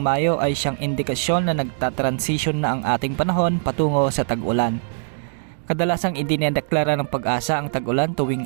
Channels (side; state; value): left; silent; digital silence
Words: ay siyang indikasyon na nagtatransition na ang ating panahon patungo sa tag-ulan. Kadalasang idinedeklara ng Pag-asa ang tag-ulan tuwing